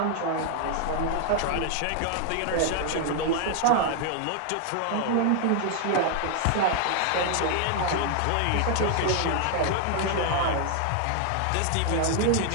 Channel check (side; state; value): both; different; correlation 0.00